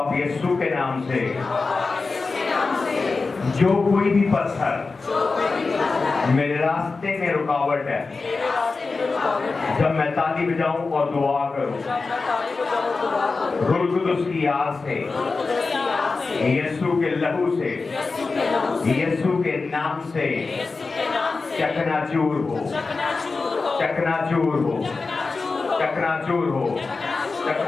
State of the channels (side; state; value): right; quieter; 4.1 dB